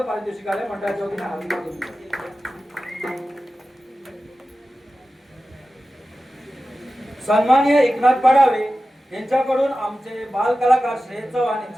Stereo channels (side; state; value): both; normal; correlation 0.94